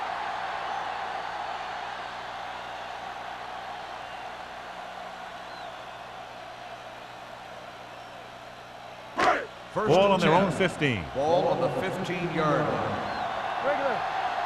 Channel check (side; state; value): both; identical; correlation 1.00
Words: Ball on their own 15. Ball on the 15-yard line. Regular.